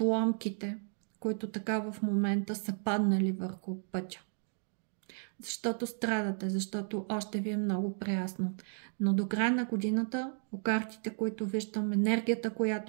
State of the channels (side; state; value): left; silent; 55 dB below the other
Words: които така в момента са паднали върху пътя. Защото страдате, защото още ви е много приясно. Но до края на годината, по картите, които виждам, енергията,